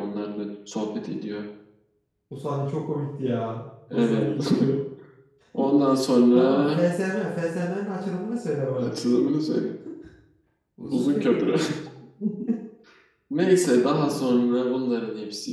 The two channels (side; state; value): both; identical; correlation 1.00